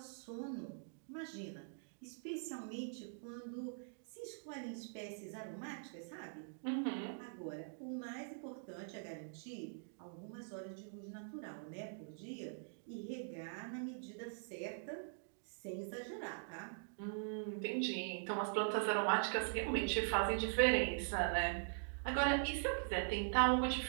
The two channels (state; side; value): silent; left; digital silence